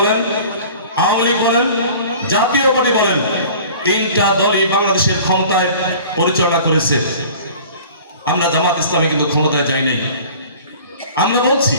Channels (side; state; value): both; inverted; correlation -0.45